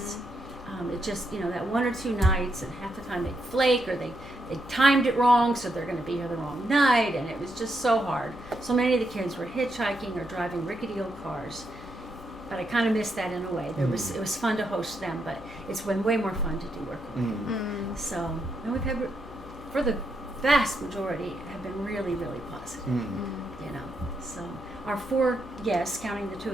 It just, you know, that 1 or 2 nights, and half the time they'd flake, or they timed it wrong, so they're going to be here the wrong night, and it was just so hard. So many of the kids were hitchhiking or driving rickety old cars. But I kind of missed that in a way. It was fun to host them, but it's been way more fun to do Workaway. So, and we've had, for the vast majority, have been really, really positive. You know, so our 4 guests, counting the 2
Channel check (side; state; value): both; normal; correlation 0.81